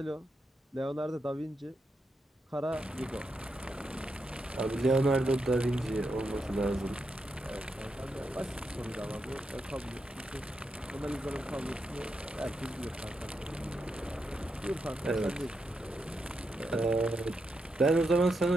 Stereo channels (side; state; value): both; normal; correlation 0.84